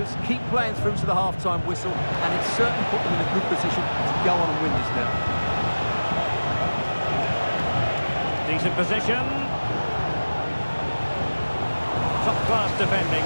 keep playing through to the half-time whistle, and it's certainly put them in a good position to go on and win this now. Decent position. Top-class defending.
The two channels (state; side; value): inverted; both; correlation -1.00